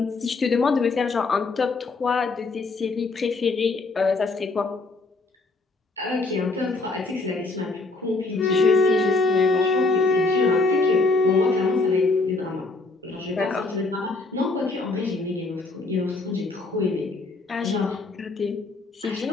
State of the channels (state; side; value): quieter; right; 3.6 dB